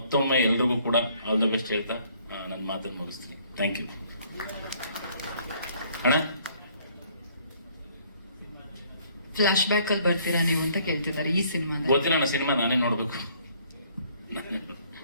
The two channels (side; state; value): both; inverted; correlation -0.62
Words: ಎಲ್ರಿಗೂ ಕೂಡ ಆಲ್ ದ ಬೆಸ್ಟ್ ಹೇಳ್ತಾ ನನ್ನ ಮಾತನ್ನು ಮುಗಿಸ್ತೀನಿ. Thank you. ಅಣ್ಣ, ಫ್ಲಾಶ್ ಬ್ಯಾಕ್ ಅಲ್ಲಿ ಬರ್ತೀರಾ ನೀವು ಅಂತ ಕೇಳ್ತಿದ್ದಾರೆ ಈ ಸಿನಿಮಾ. ಗೊತ್ತಿಲ್ಲ ಅಣ್ಣ, ಸಿನಿಮಾ ನಾನೇ ನೋಡ್ಬೇಕು.